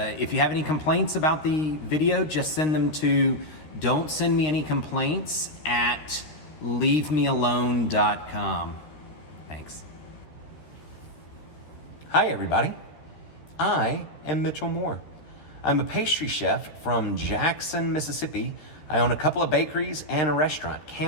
if you have any complaints about the video, just send them to don'tsendmeanycomplaints@leavemealone.com. Thanks. Hi everybody, I am Mitchell Moore. I'm a pastry chef from Jackson, Mississippi. I own a couple of bakeries and a restaurant,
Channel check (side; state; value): right; late; 13 ms